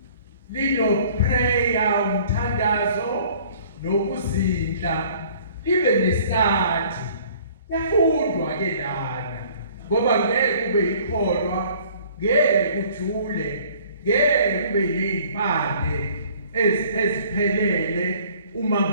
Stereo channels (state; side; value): inverted; both; correlation -0.54